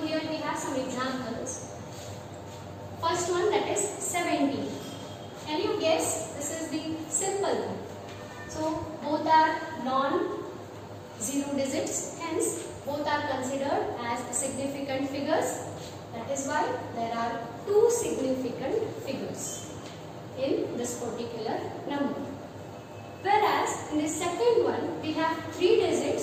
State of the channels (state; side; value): identical; both; correlation 1.00